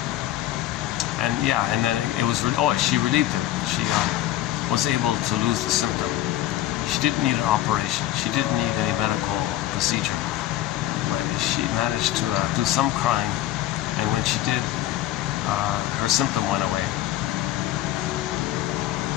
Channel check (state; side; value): quieter; right; 13.8 dB